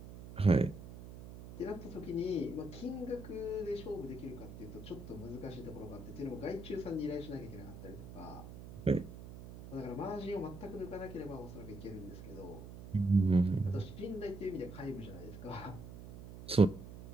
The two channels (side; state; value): right; noise; hum, 13 dB below the sound